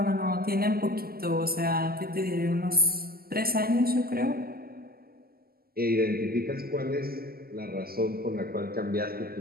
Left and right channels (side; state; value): left; late; 0.44 ms